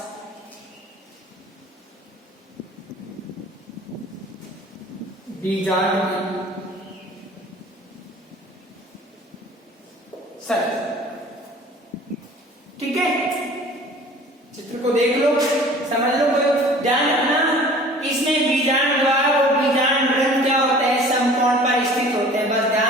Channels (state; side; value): normal; both; correlation 0.47